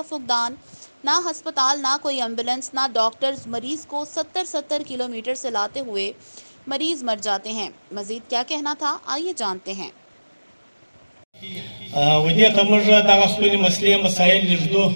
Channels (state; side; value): inverted; both; correlation -1.00